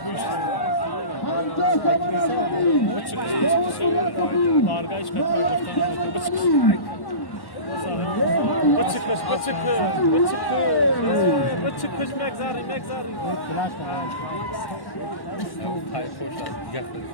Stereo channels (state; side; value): late; right; 1.1 ms